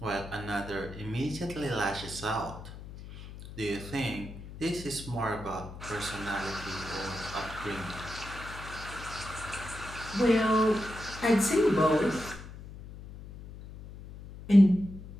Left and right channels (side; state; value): left; noise; hum, 13 dB below the sound